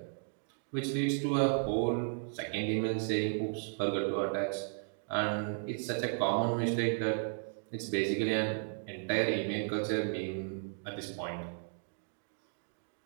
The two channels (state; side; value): silent; left; digital silence